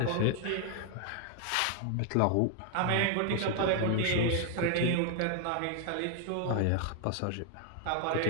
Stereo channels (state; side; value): different; both; correlation 0.00